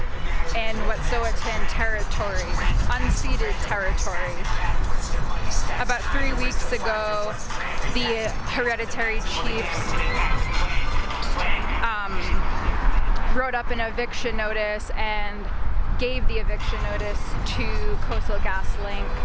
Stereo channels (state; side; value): identical; both; correlation 1.00